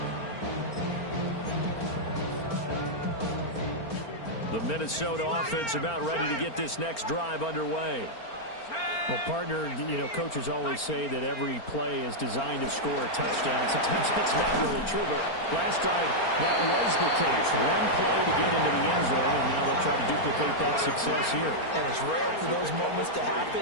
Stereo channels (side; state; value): right; late; 4.4 ms